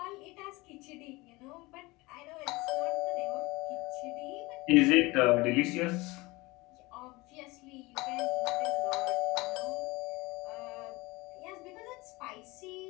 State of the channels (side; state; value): right; quieter; 22.6 dB